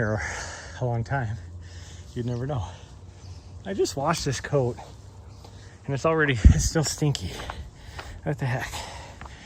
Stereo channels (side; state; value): both; identical; correlation 1.00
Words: a long time, you'd never know. I just washed this coat and it's still stinky. What the heck?